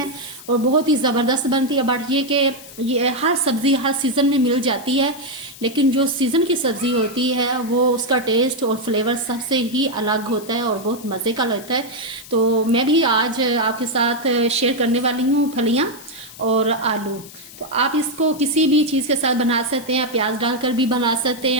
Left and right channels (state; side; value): noise; left; hiss, 17 dB below the sound